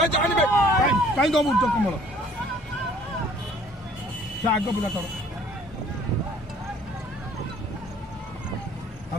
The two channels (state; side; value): normal; both; correlation 0.56